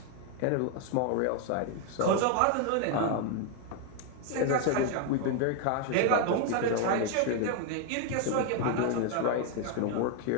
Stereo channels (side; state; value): both; different; correlation 0.01